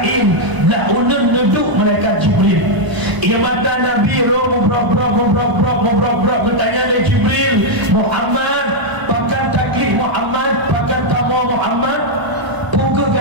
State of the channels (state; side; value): late; left; 1.0 ms